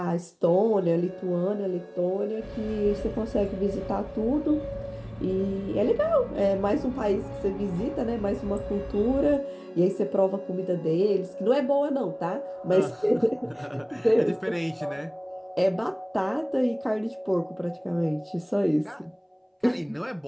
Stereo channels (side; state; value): both; identical; correlation 1.00